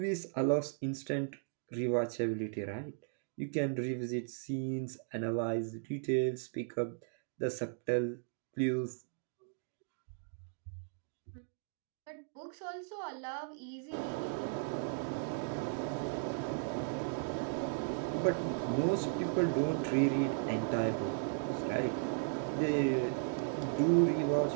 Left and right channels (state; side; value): silent; left; digital silence